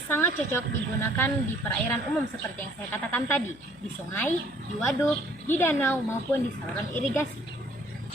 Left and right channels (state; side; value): noise; left; hum, 24 dB below the sound